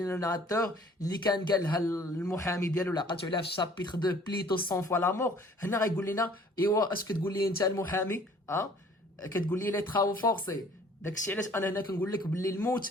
لو ناراتور اللي كان قالها المحامي ديالو اللي عقلتو عليها في الشابيتر 2 بليتو 100 فوا لا مور. هنا غيقول لنا ايوا اش كتقول لي انت المحامي كتقول لي لي ترافو فورسي. داكشي علاش انا هنا كنقول لك باللي الموت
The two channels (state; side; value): normal; both; correlation 0.54